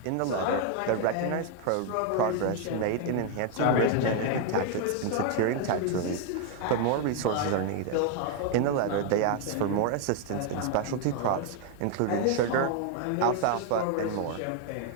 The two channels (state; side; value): different; both; correlation 0.00